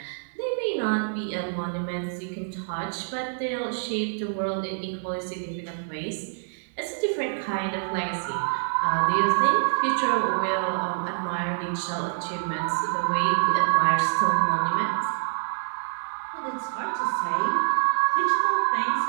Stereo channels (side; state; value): left; silent; 61 dB below the other